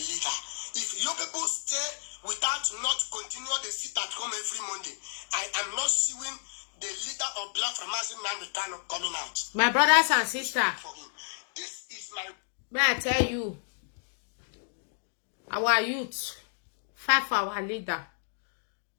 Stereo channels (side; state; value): right; silent; digital silence